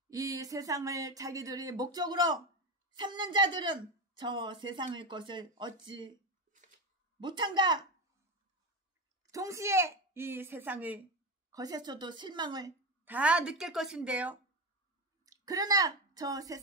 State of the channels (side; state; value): both; normal; correlation 0.17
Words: 이 세상을 자기들이 목적으로 삼는 자들은 저 세상의 것을 얻지 못한가? 동시에 이 세상의 것에서도 실망을 다 느낄 것인데요. 그러나 저